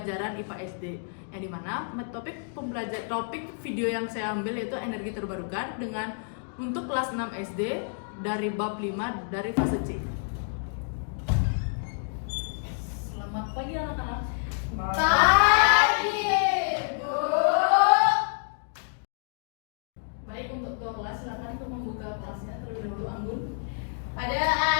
IPA SD, yang dimana topik video yang saya ambil yaitu energi terbarukan dengan untuk kelas 6 SD dari bab 5 dari fase C. Selamat pagi anak-anak. Pagi, Bu. Baik, untuk ketua kelas silakan untuk membuka kelasnya terlebih dahulu. Anggun. Pada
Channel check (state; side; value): silent; right; digital silence